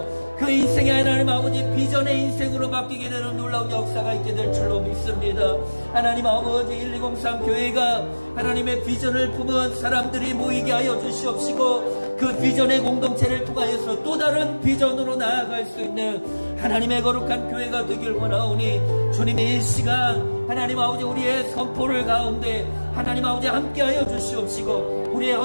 그 인생의 하나님 아버지 비전의 인생으로 바뀌게 되는 놀라운 역사가 있게 될 줄로 믿습니다. 하나님 아버지 1203 교회가 하나님의 비전을 품은 사람들이 모이게 하여 주시옵시고, 그 비전의 공동체를 통하여서 또 다른 비전으로 나아갈 수 있는 하나님의 거룩한 교회가 되길 원하오니, 주님의 이 시간 하나님 아버지 우리의 선포를 가운데 하나님 아버지 함께하여 주시옵시고, 우리의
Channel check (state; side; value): inverted; both; correlation -1.00